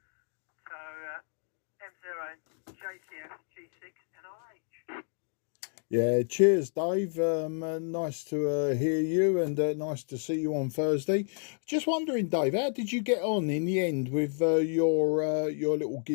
So, M0, JCF, G6, NRH. Yeah, cheers, Dave. Nice to hear you, and nice to see you on Thursday. Just wondering, Dave, how did you get on in the end with your little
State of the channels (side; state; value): right; silent; 58 dB below the other